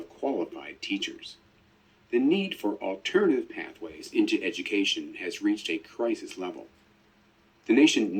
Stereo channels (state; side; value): identical; both; correlation 1.00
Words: qualified teachers. The need for alternative pathways into education has reached a crisis level. The nation